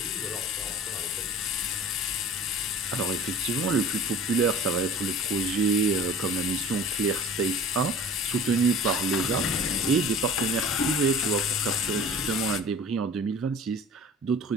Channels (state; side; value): normal; both; correlation 0.43